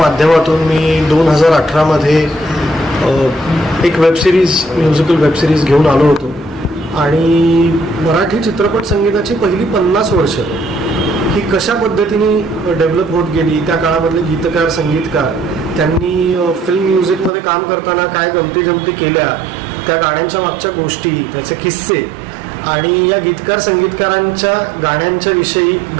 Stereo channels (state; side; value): drops out; left; at 17.3 s